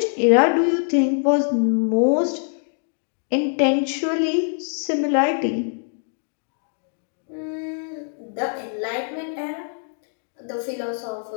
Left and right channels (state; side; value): silent; right; digital silence